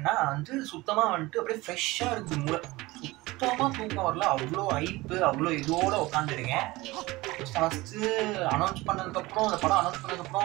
வந்து சுத்தமாக வந்துட்டு அப்படியே ஃப்ரெஷ்ஷாக இருக்குது மூளை. சுத்தமாக தூக்கம் வரல. அவ்வளோ ஐப்பு, அவ்வளோ இதோடு உட்காந்துருக்கேன். ஃபஸ்ட்டு அனௌன்ஸ் பண்ணதுக்கப்புறம், அந்த படம் அனௌன்ஸ்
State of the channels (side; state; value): left; quieter; 20.5 dB